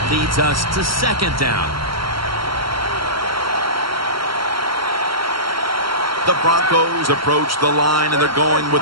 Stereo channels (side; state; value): left; late; 0.73 ms